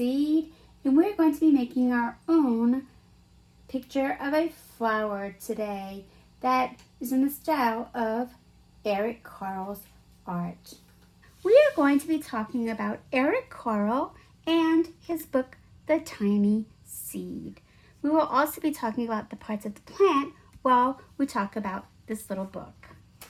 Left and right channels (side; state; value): both; identical; correlation 1.00